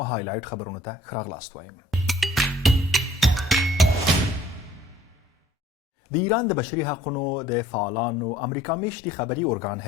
هایلایټ خبرونه ته ښه راغلاست وایم. د ایران د بشري حقونو د فعالانو امریکا میشتي خبري ارګان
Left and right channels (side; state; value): both; normal; correlation 0.56